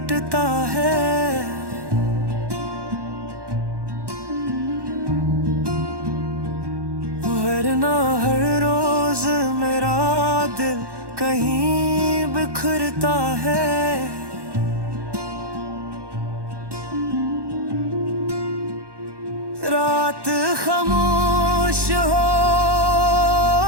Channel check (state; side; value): late; left; 1.1 ms